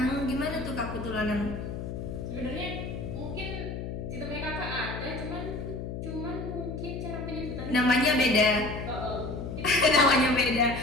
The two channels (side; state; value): left; noise; hum, 6 dB below the sound